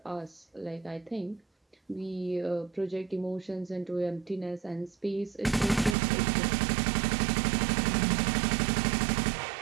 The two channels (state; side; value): drops out; left; at 6.0 s